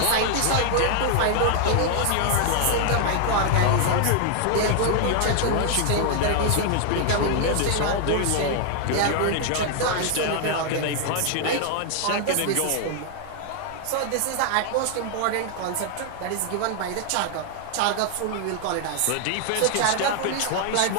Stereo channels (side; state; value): both; different; correlation 0.00